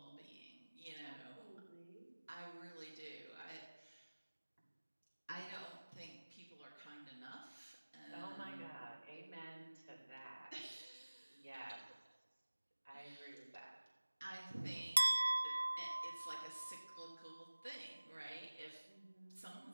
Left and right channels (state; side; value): inverted; both; correlation -1.00